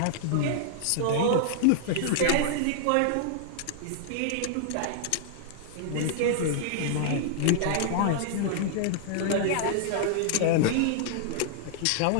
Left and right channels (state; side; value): different; both; correlation -0.01